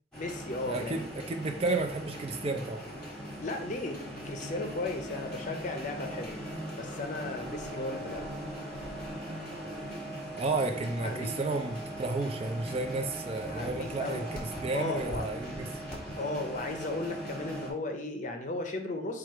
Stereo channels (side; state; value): both; normal; correlation 0.36